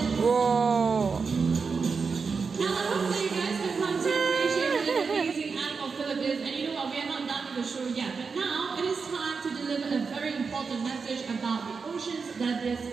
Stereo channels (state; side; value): quieter; left; 5.1 dB